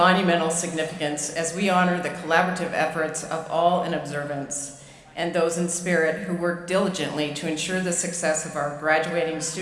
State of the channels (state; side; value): identical; both; correlation 1.00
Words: significance as we honor the collaborative efforts of all in observance and those in spirit who work diligently to ensure the success of our graduating